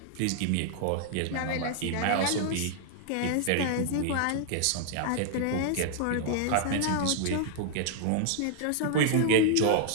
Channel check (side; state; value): both; different; correlation 0.00